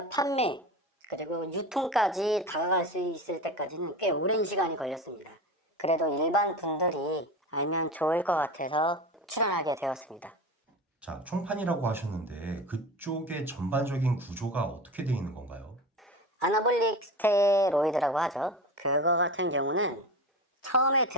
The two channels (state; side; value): normal; both; correlation 0.29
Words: 판매 그리고 유통까지 다가갈 수 있을 때까지는 꽤 오랜 시간이 걸렸습니다. 그래도 일반 분들이 알면 좋을 것 같아서 출연하게 되었습니다. 자, 총판이라고 하셨는데 그쪽의 전반적인 구조가 어떻게 되어 있는 건가요? 아나볼릭 스테로이드라고 하죠. 그거 같은 경우는 처음에